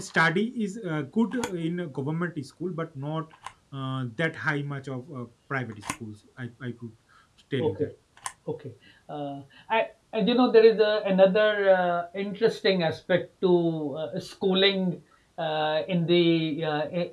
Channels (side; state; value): both; identical; correlation 1.00